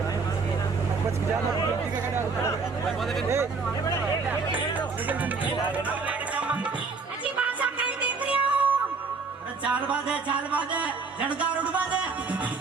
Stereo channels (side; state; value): left; quieter; 4.5 dB